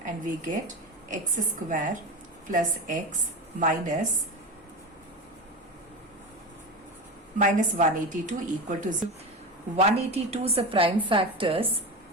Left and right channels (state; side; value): normal; both; correlation 0.23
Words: and we get x square plus x minus 182 equal to 0. 182's prime factors